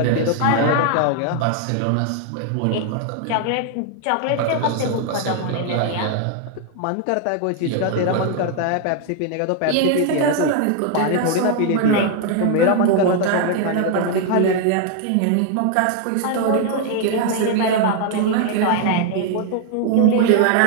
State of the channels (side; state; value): both; different; correlation 0.00